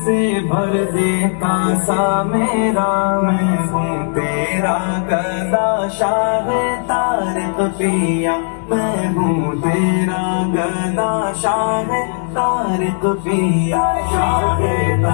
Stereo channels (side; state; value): right; silent; digital silence